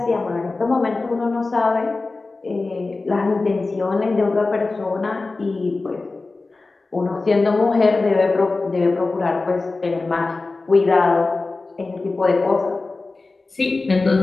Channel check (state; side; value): quieter; right; 3.6 dB